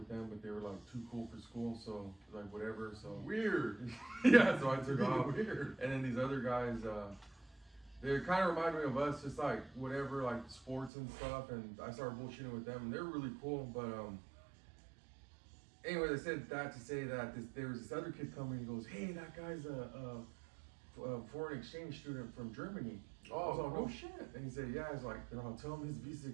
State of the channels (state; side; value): drops out; left; at 10.9 s